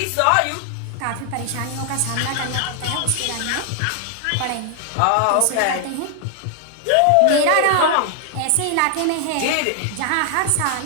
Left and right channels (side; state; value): both; different; correlation 0.00